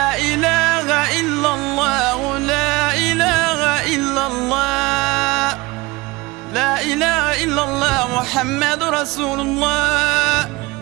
إله إلا الله لا إله إلا الله لا إله إلا الله محمد رسول الله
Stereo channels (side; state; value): left; quieter; 22.7 dB